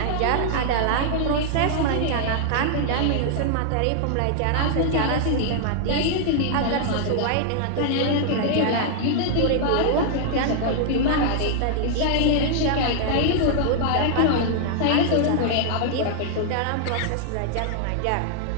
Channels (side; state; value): both; different; correlation -0.01